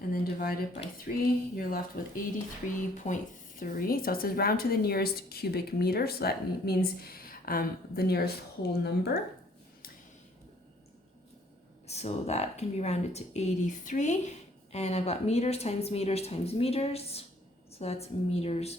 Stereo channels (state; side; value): normal; both; correlation 0.60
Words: then divide it by 3. You're left with 83.3. So it says round to the nearest cubic meter. So that means the nearest whole number. So that can be rounded to 83. And I've got meters times meters times meters. So that's meters